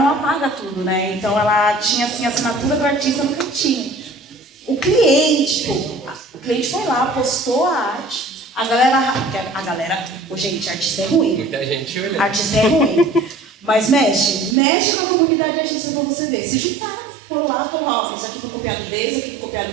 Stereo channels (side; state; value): left; drops out; at 14.6 s